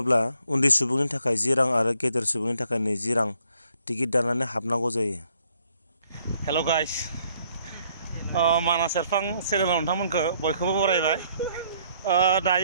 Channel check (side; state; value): both; inverted; correlation -0.67